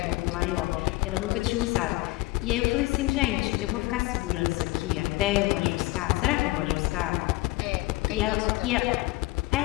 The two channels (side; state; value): right; quieter; 20.4 dB